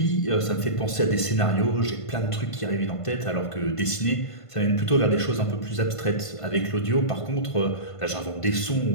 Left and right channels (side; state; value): right; late; 1.5 ms